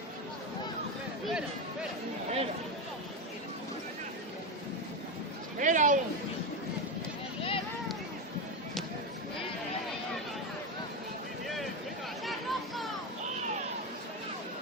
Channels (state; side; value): normal; both; correlation 0.14